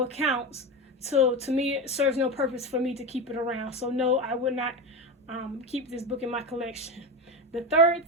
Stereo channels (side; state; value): both; normal; correlation 0.20